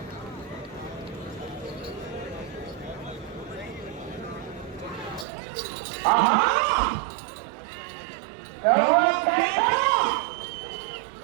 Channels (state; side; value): drops out; left; at 5.2 s